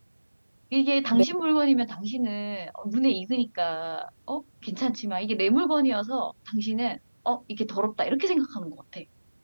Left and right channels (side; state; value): both; inverted; correlation -1.00